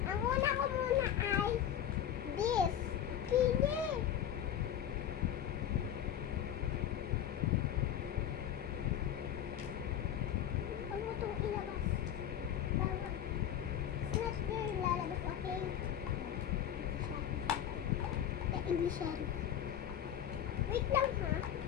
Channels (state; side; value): quieter; right; 10.0 dB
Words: Ang una ko muna ay this. Kini. Huwag mo itong ilabas. Bawal. It's not there lalabas, okay? English yan. Wait lang ha.